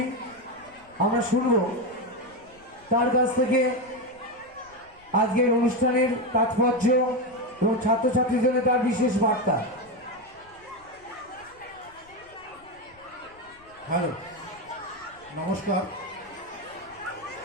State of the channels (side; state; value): left; noise; rumble, 28 dB below the sound